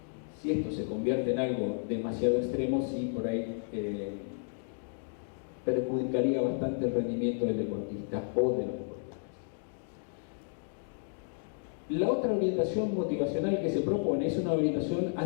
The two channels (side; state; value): right; silent; digital silence